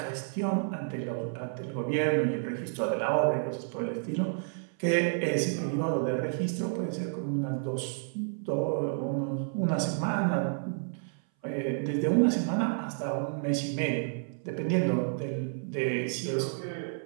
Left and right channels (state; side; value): silent; left; 57 dB below the other